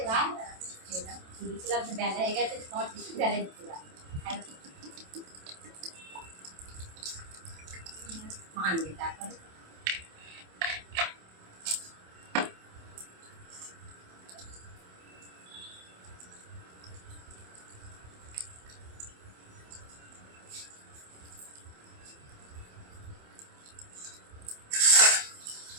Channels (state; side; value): late; left; 27 ms